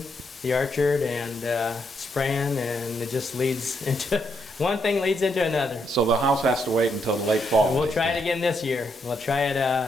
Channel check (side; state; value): both; normal; correlation 0.78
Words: the orchard and spraying, and it just leads into, one thing leads into another. So the house has to wait until the late fall. We'll try it again this year. We'll try